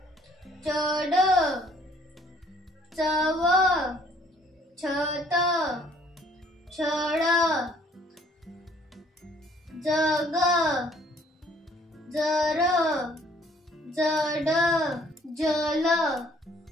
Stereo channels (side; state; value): both; normal; correlation 0.60